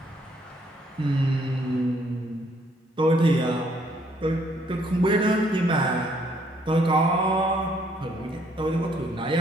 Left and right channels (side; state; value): both; normal; correlation 0.67